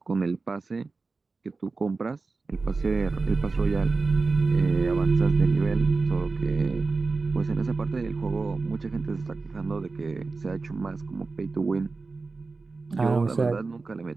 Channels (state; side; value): quieter; left; 4.0 dB